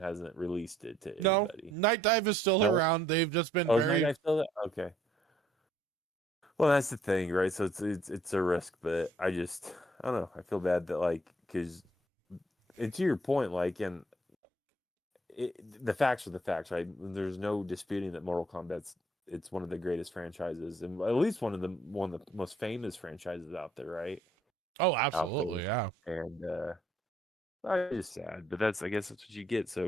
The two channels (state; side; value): normal; both; correlation 0.65